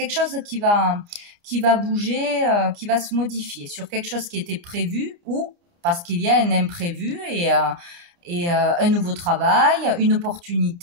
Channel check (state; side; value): late; left; 29 ms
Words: chose qui va bouger, qui va se modifier sur quelque chose qui était prévu, ou parce qu'il y a un imprévu et un nouveau travail, une